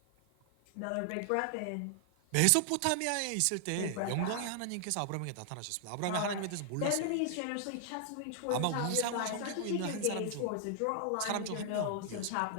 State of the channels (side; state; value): both; different; correlation 0.00